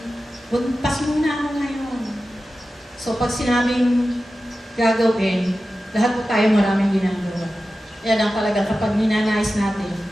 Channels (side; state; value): both; normal; correlation 0.94